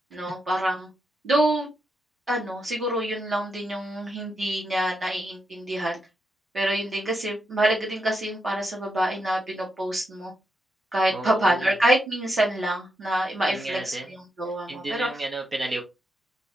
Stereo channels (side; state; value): both; normal; correlation 0.83